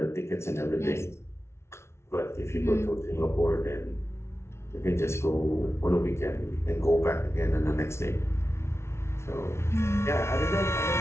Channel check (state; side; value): late; right; 0.13 ms